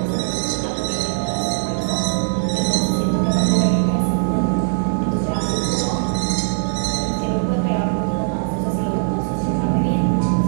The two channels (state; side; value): silent; left; digital silence